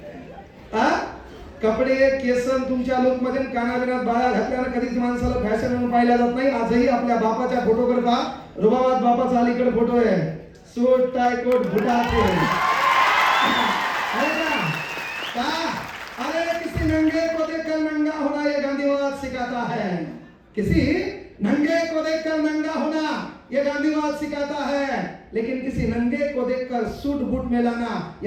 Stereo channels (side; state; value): both; identical; correlation 1.00